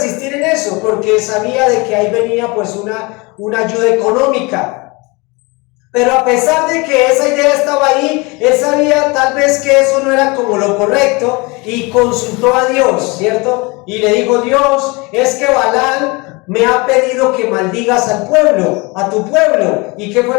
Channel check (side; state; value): right; quieter; 26.7 dB